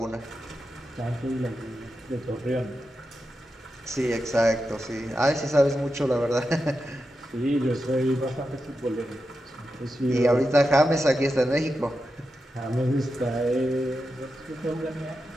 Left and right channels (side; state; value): both; normal; correlation 0.89